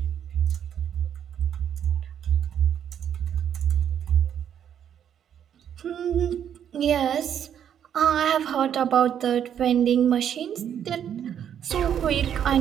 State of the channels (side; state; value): left; quieter; 9.2 dB